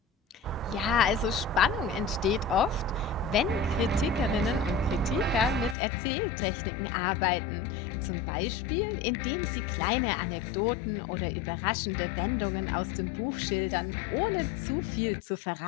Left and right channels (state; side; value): drops out; right; at 5.8 s